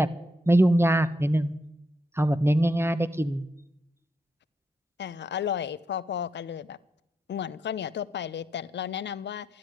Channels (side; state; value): both; normal; correlation 0.82